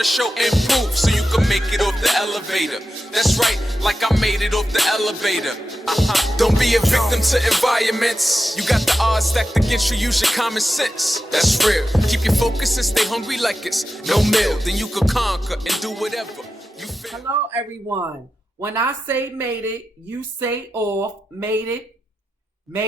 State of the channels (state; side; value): normal; both; correlation 0.90